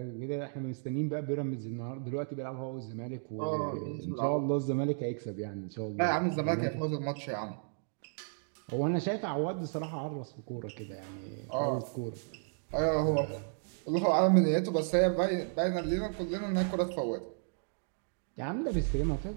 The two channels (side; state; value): left; silent; digital silence